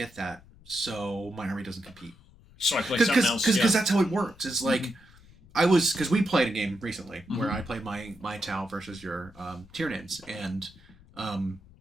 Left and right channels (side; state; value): left; noise; rumble, 24 dB below the sound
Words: that, so my army doesn't compete. So I play something else. Because that's how it works. It's like, because we played a game recently where I played my Tau versus your Tyranids, and